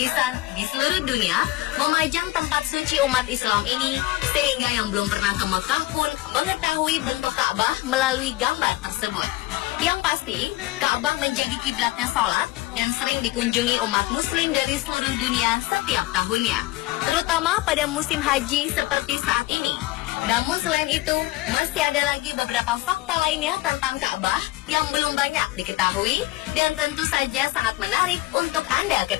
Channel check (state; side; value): quieter; right; 18.4 dB